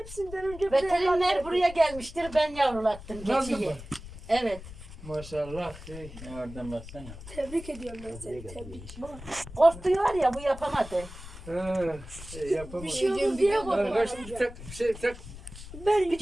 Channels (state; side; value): noise; left; rumble, 14 dB below the sound